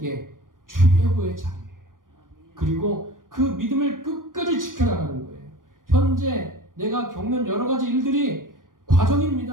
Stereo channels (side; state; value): left; late; 0.90 ms